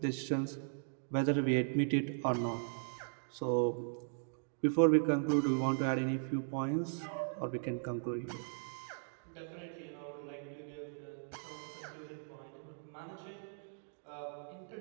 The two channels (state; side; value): silent; left; digital silence